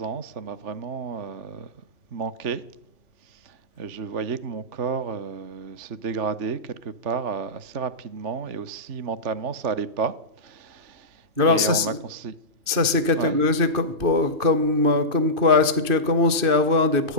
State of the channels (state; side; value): late; left; 2.6 ms